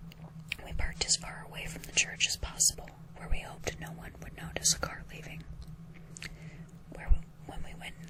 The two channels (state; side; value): identical; both; correlation 1.00